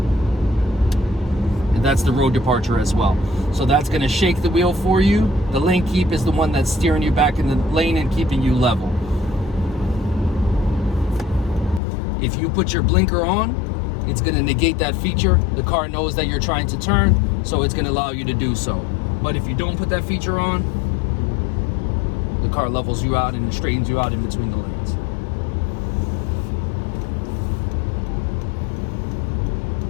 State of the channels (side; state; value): right; drops out; at 11.8 s